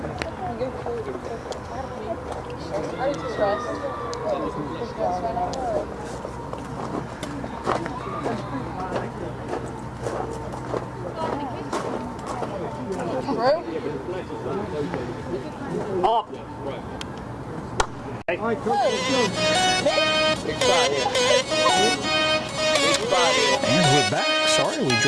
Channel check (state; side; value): identical; both; correlation 1.00